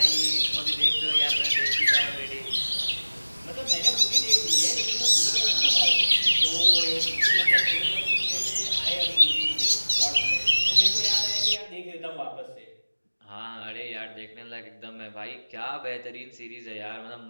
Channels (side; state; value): both; inverted; correlation -1.00